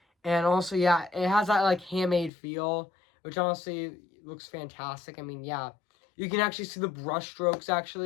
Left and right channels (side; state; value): right; drops out; at 2.3 s